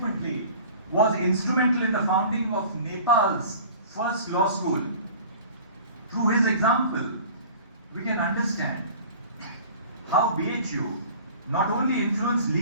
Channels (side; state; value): both; inverted; correlation -0.44